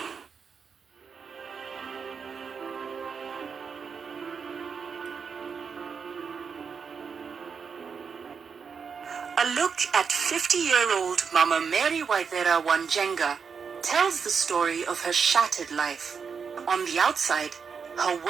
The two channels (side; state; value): left; quieter; 6.0 dB